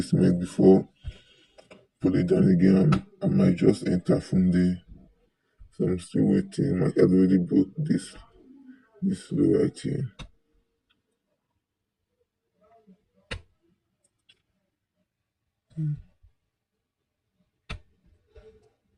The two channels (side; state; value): both; identical; correlation 1.00